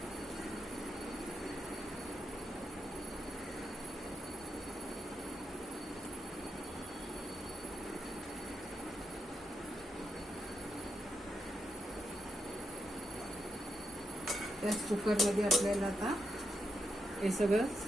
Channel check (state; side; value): normal; both; correlation 0.83